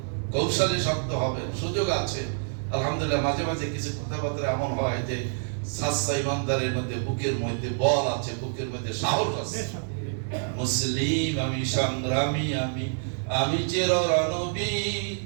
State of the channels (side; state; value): left; silent; 60 dB below the other